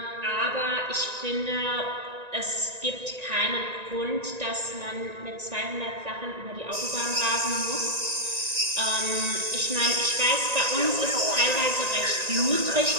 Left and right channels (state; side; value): late; left; 1.9 ms